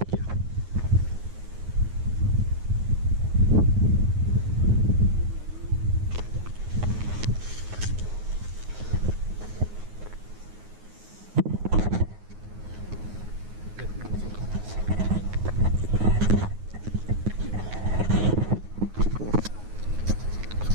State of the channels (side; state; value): left; late; 9.5 ms